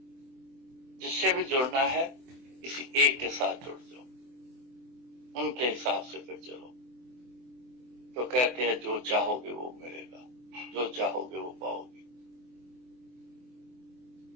जिससे भी जुड़ना है किसी एक के साथ जुड़ जाओ, उनके हिसाब से फिर चलो। तो कहते हैं जो चाहोगे वो मिलेगा, जो चाहोगे वो पाओगे।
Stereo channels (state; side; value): late; left; 24 ms